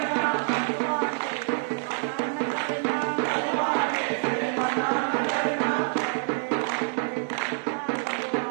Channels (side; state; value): left; silent; 60 dB below the other